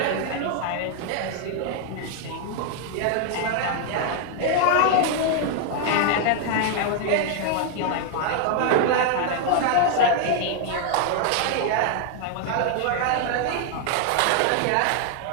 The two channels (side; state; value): both; different; correlation 0.00